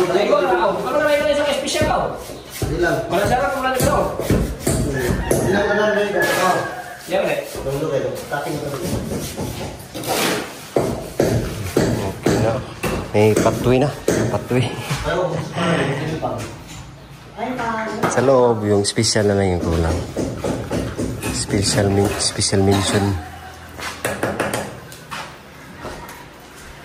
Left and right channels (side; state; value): both; identical; correlation 1.00